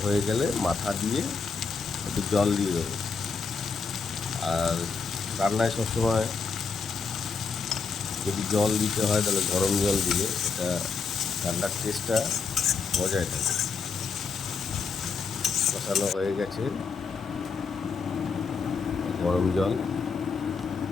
হয়ে গেলে মাথা দিয়ে একটু জল দিয়ে দেবো। আর রান্নায় সবসময় যদি জল দিতে হয় তাহলে গরম জল দিলে এটা রান্নার টেস্টটা বজায় থাকে। কষানো হয়ে গেছে, গরম জল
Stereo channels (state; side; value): quieter; right; 5.1 dB